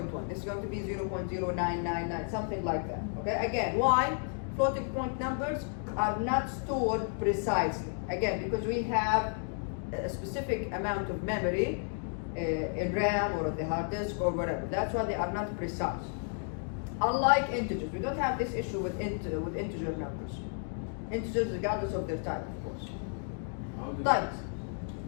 This is going to be 0.0999, something like that, okay? Again, why? Floating point numbers are not stored precisely. Again, because we have a specific amount of memory in RAM or on the hard disk or whatever. That's why they are not precise. Unlike integers, we don't have this issue with integer numbers. Integers regardless of their type, of course. Type.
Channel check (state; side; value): silent; right; 56 dB below the other